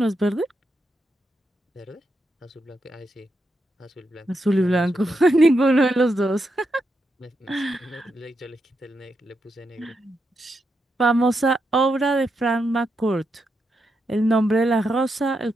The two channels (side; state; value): both; normal; correlation 0.83